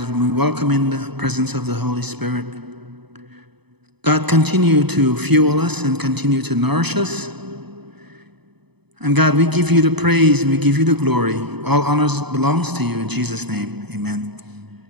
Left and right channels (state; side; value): late; left; 0.98 ms